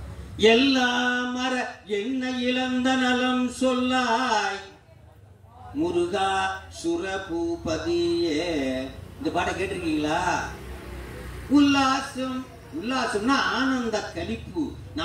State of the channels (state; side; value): identical; both; correlation 1.00